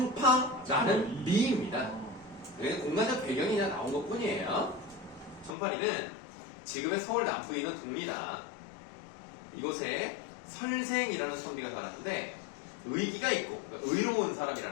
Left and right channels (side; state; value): right; drops out; at 5.6 s